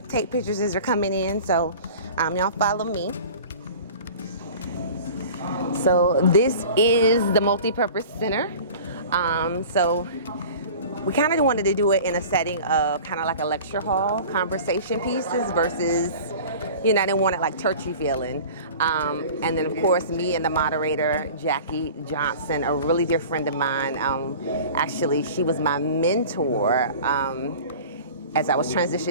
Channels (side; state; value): both; inverted; correlation -0.40